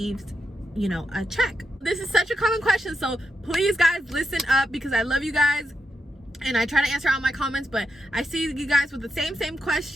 you know, a check. This is such a common question, so please guys listen up, because I love you guys and I try to answer all my comments, but I see you guys with the same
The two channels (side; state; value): both; normal; correlation 0.84